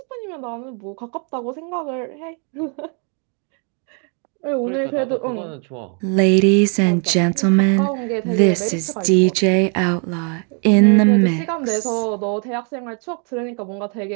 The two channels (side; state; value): left; quieter; 38.7 dB